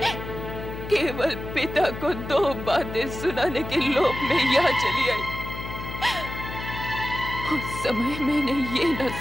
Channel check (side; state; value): left; noise; hum, 9 dB below the sound